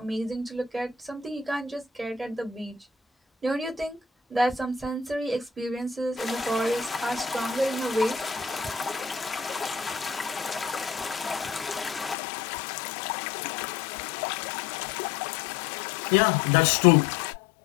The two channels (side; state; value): right; drops out; at 12.2 s